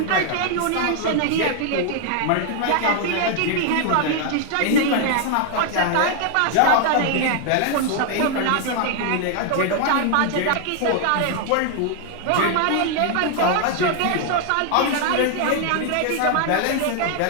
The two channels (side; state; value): both; different; correlation 0.00